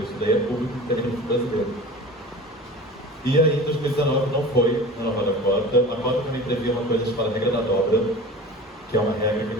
isso daí é público e técnico brasileiro. E aí, em 2019, não foi a nova cota. A cota também previa uma coisa chamada regra da dobra, que é uma regra que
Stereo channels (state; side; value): normal; both; correlation 0.37